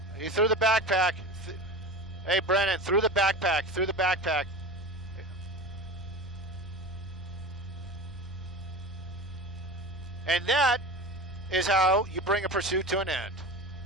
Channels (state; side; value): normal; both; correlation 0.30